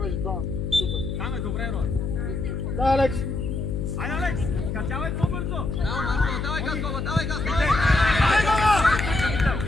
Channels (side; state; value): left; noise; hum, 3 dB below the sound